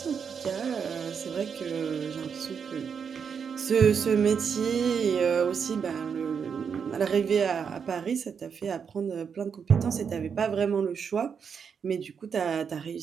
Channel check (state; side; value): quieter; left; 6.7 dB